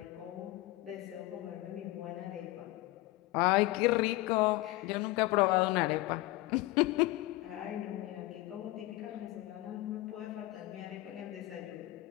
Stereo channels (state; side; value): quieter; right; 18.6 dB